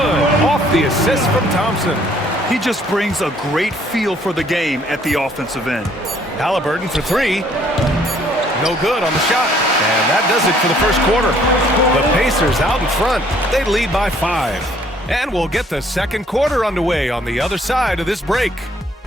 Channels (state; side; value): normal; both; correlation 0.62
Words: Off the assist from Thompson. He just brings a great feel for the game at the offensive end. Halliburton for 3. No good on the shot. And that does it for the first quarter. The Pacers out in front. They lead by 5. And we'll get the second quarter underway on the other side of this break.